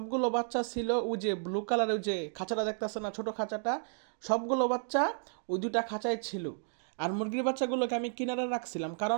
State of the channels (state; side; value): silent; left; digital silence